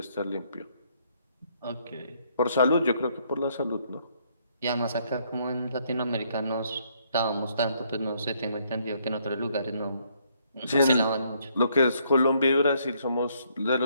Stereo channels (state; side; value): inverted; both; correlation -0.69